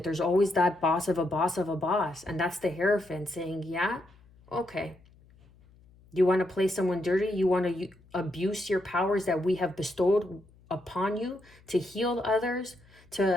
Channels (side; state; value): left; noise; hum, 27 dB below the sound